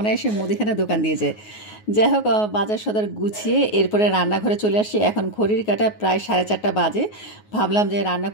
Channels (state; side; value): late; right; 9.4 ms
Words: মুদিখানা দোকান দিয়ে যায়। যাই হোক, বাজার সদার গুছিয়ে এরপরে রান্নাঘরে চলে আসি। এখন ঘড়ির কাঁটা প্রায় 4:30 বাজে। ভাবলাম যে রান্না